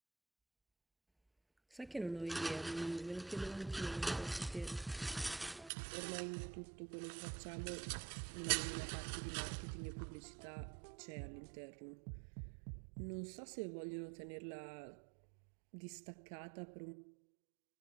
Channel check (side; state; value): left; drops out; at 5.7 s